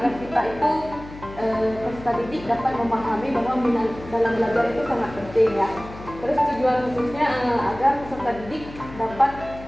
kita itu peserta didik dapat memahami bahwa minat dalam belajar itu sangat penting ya. Terus tujuan khususnya agar peserta didik dapat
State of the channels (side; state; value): left; noise; hum, 15 dB below the sound